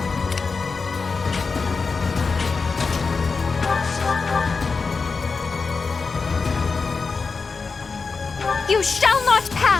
You shall not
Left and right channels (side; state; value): right; quieter; 4.7 dB